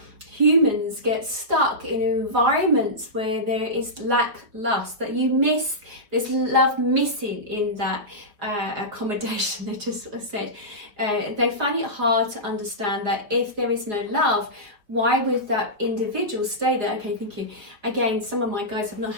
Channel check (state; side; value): late; left; 4.7 ms